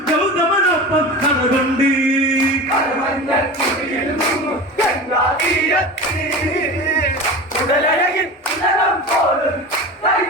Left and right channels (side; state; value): both; normal; correlation 0.31